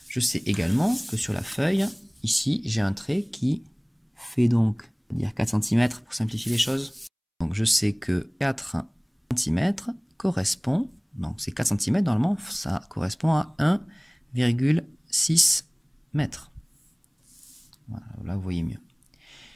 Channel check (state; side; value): identical; both; correlation 1.00